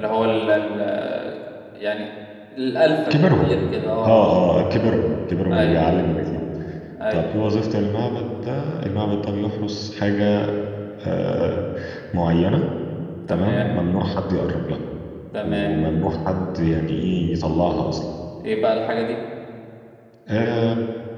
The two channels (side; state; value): both; identical; correlation 1.00